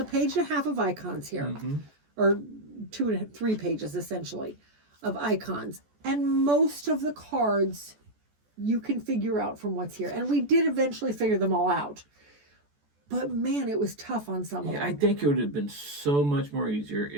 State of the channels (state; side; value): late; left; 14 ms